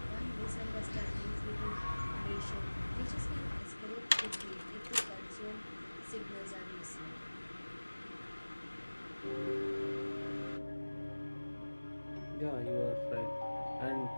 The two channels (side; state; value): both; inverted; correlation -1.00